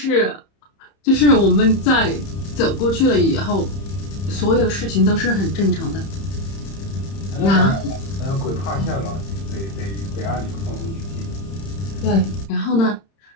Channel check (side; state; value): right; late; 31 ms